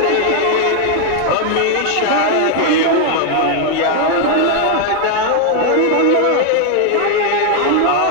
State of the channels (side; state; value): both; different; correlation 0.00